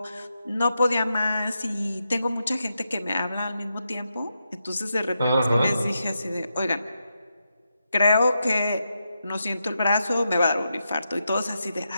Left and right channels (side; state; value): both; inverted; correlation -0.86